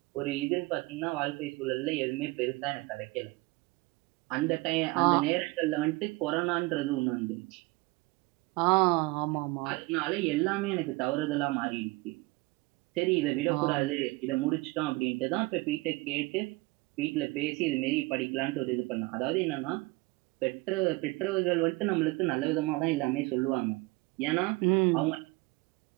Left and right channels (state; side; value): quieter; left; 23.7 dB